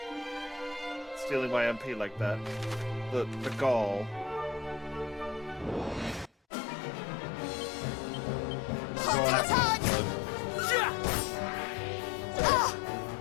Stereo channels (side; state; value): right; drops out; at 6.3 s